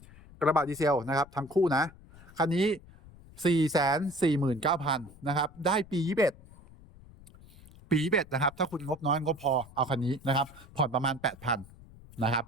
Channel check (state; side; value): noise; left; rumble, 22 dB below the sound